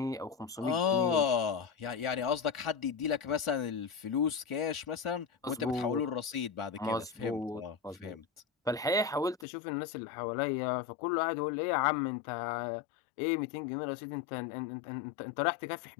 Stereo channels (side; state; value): right; drops out; at 9.5 s